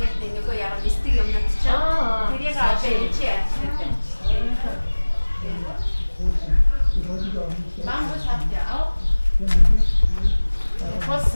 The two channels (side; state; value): both; inverted; correlation -1.00